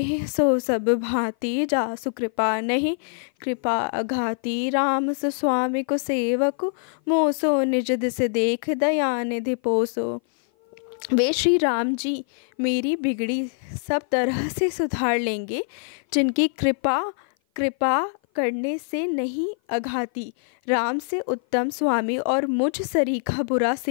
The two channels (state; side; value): silent; right; 56 dB below the other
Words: सो सब भांति, जासु कृपा नहीं कृपा अघाती। राम सुस्वामी को सेवक, मोसो निज दिस देख दया निधि पोसो। वे श्री राम जी मेरी बिगड़ी सब तरह से सुधार लेंगे, जिनकी कृपा करने से नहीं अघाती। राम से उत्तम स्वामी और मुझ सरीखा बुरा